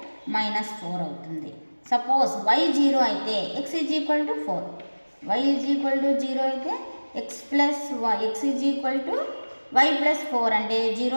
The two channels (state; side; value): inverted; both; correlation -1.00